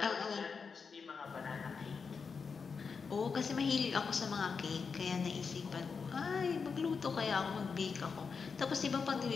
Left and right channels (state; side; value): quieter; right; 5.4 dB